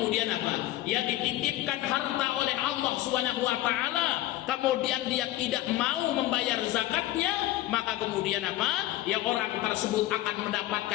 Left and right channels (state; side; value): quieter; right; 15.5 dB